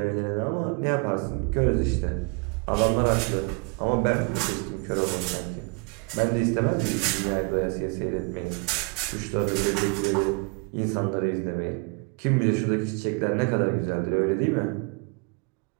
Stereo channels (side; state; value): left; quieter; 31.6 dB